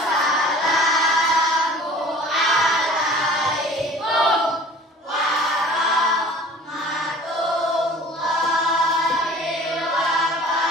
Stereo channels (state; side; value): normal; both; correlation 0.46